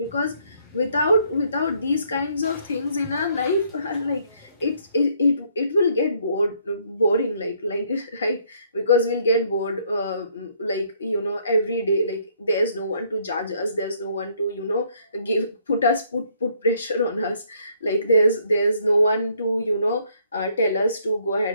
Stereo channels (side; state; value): both; inverted; correlation -0.67